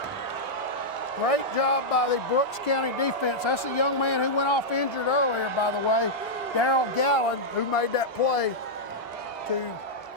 Great job by the Brooks County defense. That's a young man who went off injured earlier, by the way, Darrell Gallen, who made that play to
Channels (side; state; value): both; normal; correlation -0.07